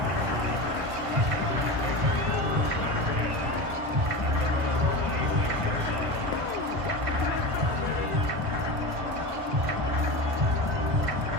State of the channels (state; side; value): late; left; 1.5 ms